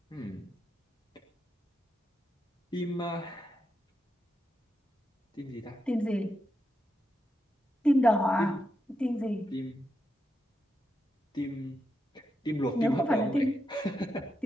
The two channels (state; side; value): normal; both; correlation 0.85